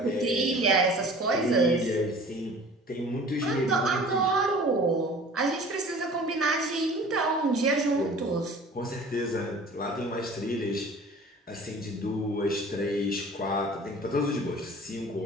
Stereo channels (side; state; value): both; normal; correlation 0.45